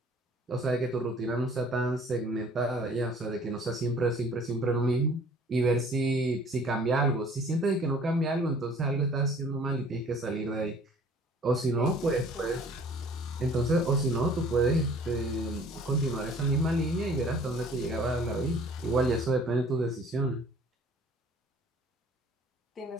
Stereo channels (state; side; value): normal; both; correlation 0.52